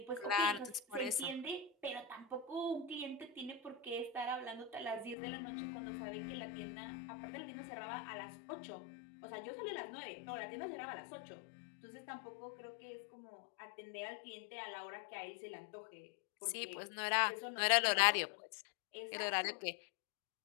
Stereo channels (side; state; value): right; drops out; at 5.2 s